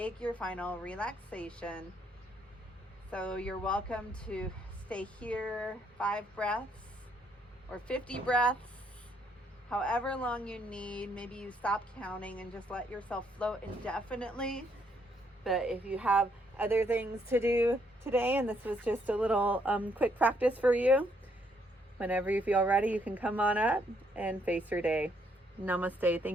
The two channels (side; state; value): both; normal; correlation 0.71